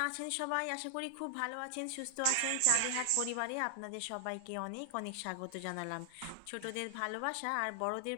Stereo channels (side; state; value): both; different; correlation 0.00